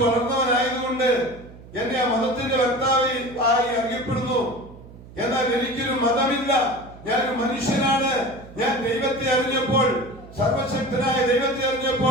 വളർന്നവനായതുകൊണ്ട് എന്നെ ആ മതത്തിന്റെ വക്താവ് ആയി അറിയപ്പെടുന്നു. എന്നാൽ എനിക്കൊരു മതമില്ല. ഞാനൊരു മനുഷ്യനാണ്. ഞാൻ ദൈവത്തെ അറിഞ്ഞപ്പോൾ, സർവശക്തനായ ദൈവത്തെ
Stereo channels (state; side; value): noise; right; hum, 19 dB below the sound